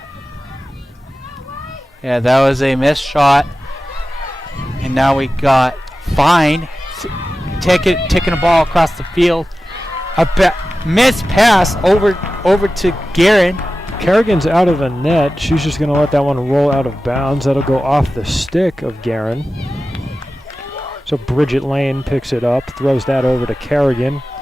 Yeah, that was a missed shot. And now we got Fine taking a ball across the field. A missed pass over to Guerin. Kerrigan's out of the net. She's just going to let that one roll out of bounds. That'll go off the stick of Guerin. So Bridget Lane picks it up, throws that over to Kerrigan,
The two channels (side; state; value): both; normal; correlation 0.95